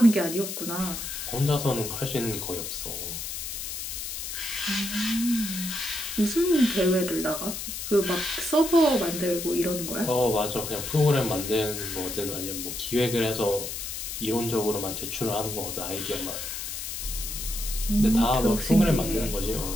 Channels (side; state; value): left; noise; hiss, 6 dB below the sound